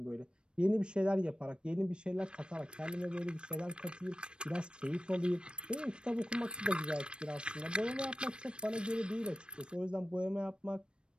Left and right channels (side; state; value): left; late; 0.054 ms